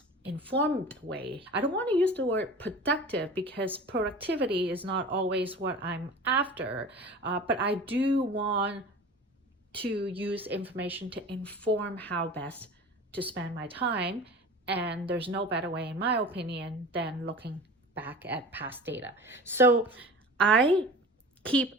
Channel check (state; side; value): normal; both; correlation 0.37